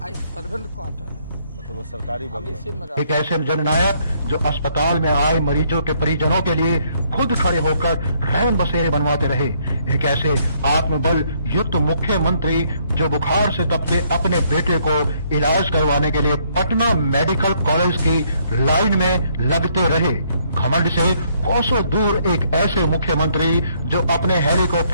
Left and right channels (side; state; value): both; inverted; correlation -0.68